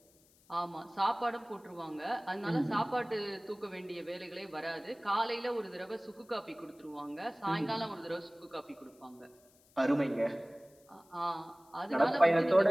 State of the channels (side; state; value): left; noise; hiss, 30 dB below the sound